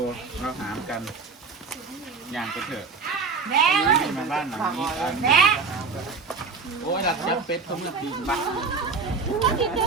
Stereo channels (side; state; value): left; quieter; 4.8 dB